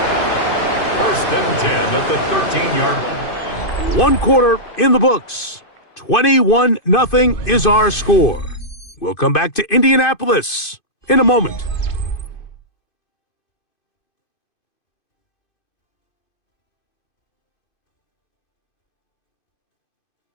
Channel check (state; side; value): late; right; 2.5 ms